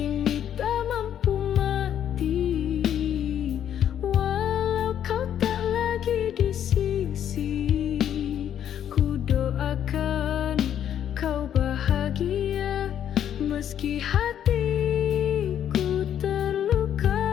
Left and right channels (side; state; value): right; quieter; 9.9 dB